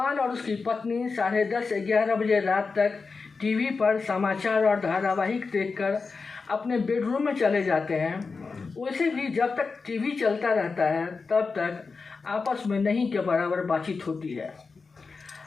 और उसकी पत्नी 10:30-11 बजे रात तक टीवी पर समाचार और धारावाहिक देखकर अपने बेडरूम में चले जाते हैं। वैसे भी जब तक टीवी चलता रहता है तब तक आपस में नहीं के बराबर बातचीत होती है।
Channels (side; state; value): right; quieter; 4.5 dB